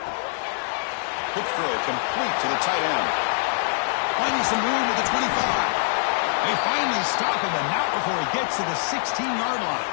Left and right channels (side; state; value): right; silent; digital silence